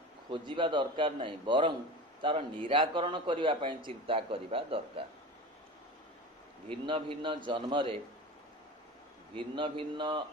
खोजिबा दरकार नहीं, बरं तार निराकरण करिबा पई चिंता करिबा दरकार। भिन्न भिन्न जन्मरे भिन्न भिन्न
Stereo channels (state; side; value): normal; both; correlation 0.32